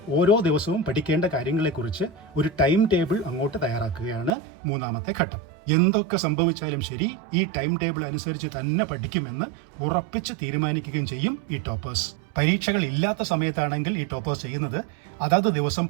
ഓരോ ദിവസവും പഠിക്കേണ്ട കാര്യങ്ങളെക്കുറിച്ച് ഒരു ടൈം ടേബിൾ അങ്ങോട്ട് തയ്യാറാക്കുകയാണ് മൂന്നാമത്തെ ഘട്ടം. എന്തൊക്കെ സംഭവിച്ചാലും ശരി, ഈ ടൈം ടേബിൾ അനുസരിച്ച് തന്നെ പഠിക്കുമെന്ന് ഉറപ്പിച്ച് തീരുമാനിക്കുകയും ചെയ്യും ഈ ടോപ്പേഴ്സ്. പരീക്ഷകൾ ഇല്ലാത്ത സമയത്താണെങ്കിൽ ഈ ടോപ്പേഴ്സ് ചെയ്യുന്നത് അതാത് ദിവസം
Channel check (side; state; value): left; drops out; at 4.4 s